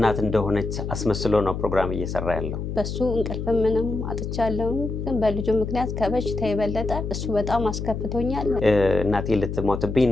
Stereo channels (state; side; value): noise; left; hum, 5 dB below the sound